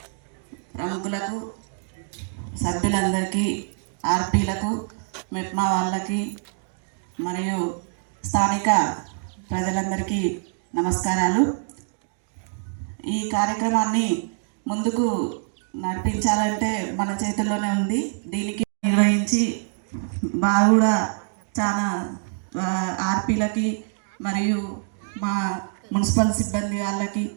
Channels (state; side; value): silent; left; digital silence